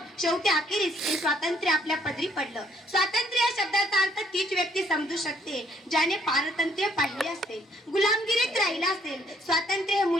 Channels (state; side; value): normal; both; correlation 0.66